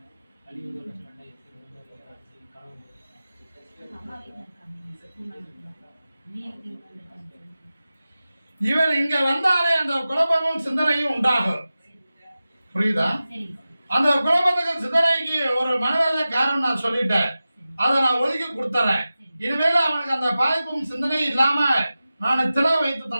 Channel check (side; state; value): both; inverted; correlation -0.95